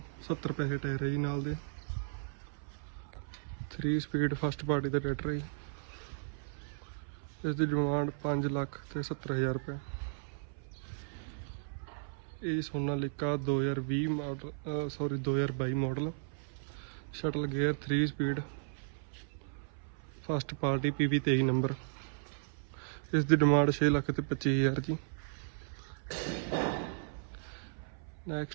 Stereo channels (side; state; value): left; silent; 54 dB below the other